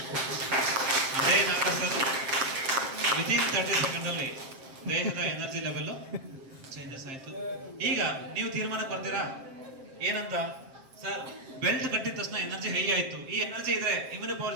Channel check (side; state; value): left; late; 7.6 ms